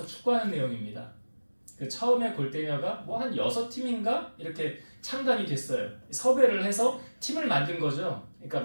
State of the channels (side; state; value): both; inverted; correlation -1.00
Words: 축구하는 내용입니다. 그 처음에 골대녀가 뭐 한 6팀인가 이렇게 창단이 됐어요. 섭외를 해서 팀을 만든 거죠. 그러니까